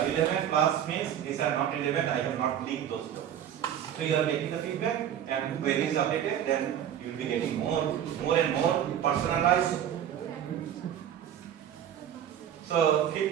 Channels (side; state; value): left; quieter; 10.0 dB